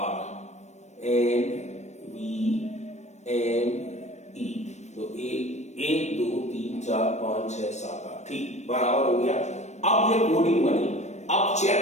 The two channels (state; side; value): late; right; 0.33 ms